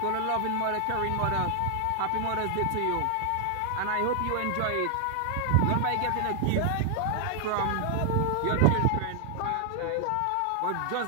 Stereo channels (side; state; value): both; different; correlation 0.00